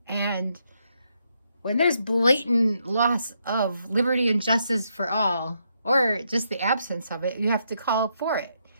And when there's blatant loss of liberty and justice for all, or just the absence of it, you have to call for it.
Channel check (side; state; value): both; inverted; correlation -0.78